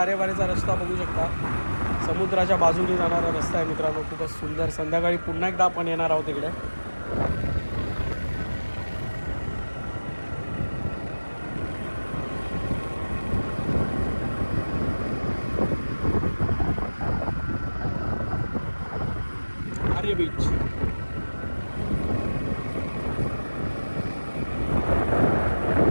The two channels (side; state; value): both; inverted; correlation -1.00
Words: रस्ता बघू शकता. समुद्राच्या बाजूने जाणारा रस्ता आहे मित्रांनो. खूपच सुंदर. संध्याकाळी पुन्हा एकदा आपण येणार आहोत इकडे. आरे बीच.